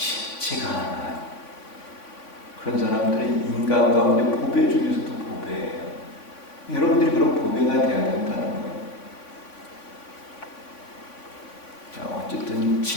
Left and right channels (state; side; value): late; right; 3.5 ms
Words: 않아요. 그런 사람들은 인간 가운데 보배 중에서도 보배예요. 여러분들이 그런 보배가 돼야 된다는 거예요. 자, 어쨌든